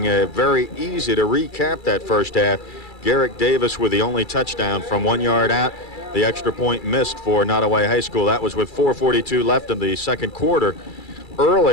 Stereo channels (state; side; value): late; right; 2.3 ms